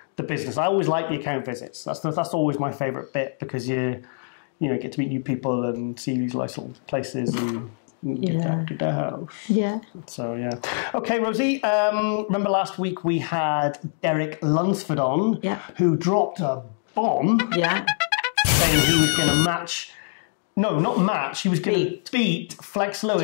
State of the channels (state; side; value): silent; right; digital silence